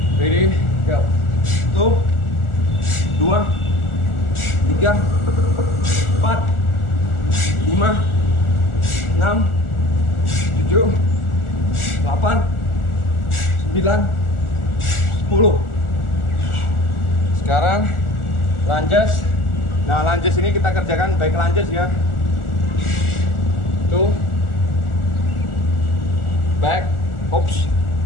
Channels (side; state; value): right; late; 1.4 ms